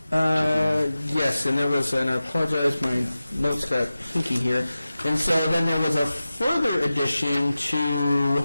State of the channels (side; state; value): both; inverted; correlation -0.95